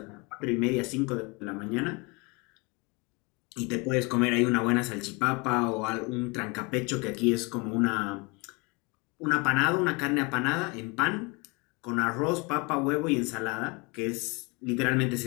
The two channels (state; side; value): quieter; right; 28.4 dB